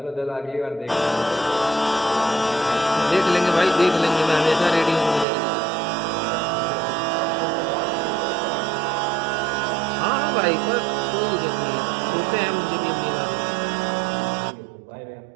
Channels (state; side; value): drops out; left; at 5.2 s